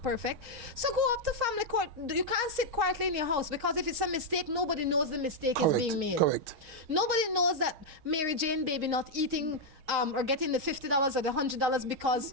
perfect. So go up to family court. You can't sit quietly in your house because if it's a mistake, nobody knows the mistake is being made. Correct. Nobody knows that Mary Jane baby not eating or getting the $50 or the $100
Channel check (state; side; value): late; left; 6.4 ms